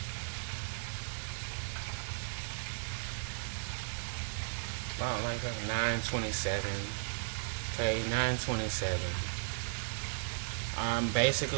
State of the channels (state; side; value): silent; left; digital silence